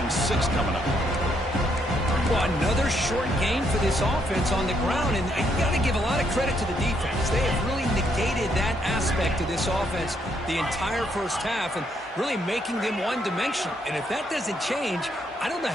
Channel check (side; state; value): both; normal; correlation 0.74